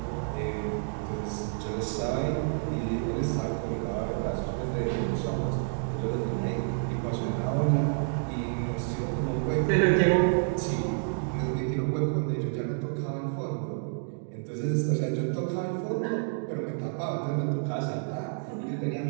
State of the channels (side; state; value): left; silent; digital silence